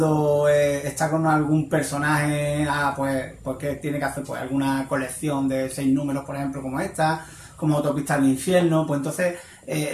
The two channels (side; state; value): both; identical; correlation 1.00